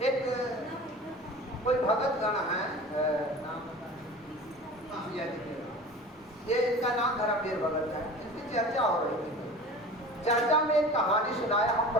एक कोई भगत गण है, नाम ये इनका नाम धर्मवीर भगत है, इनकी चर्चा हो रही थी। चर्चा में एक कहानी सुनाया, हम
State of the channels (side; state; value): both; normal; correlation 0.38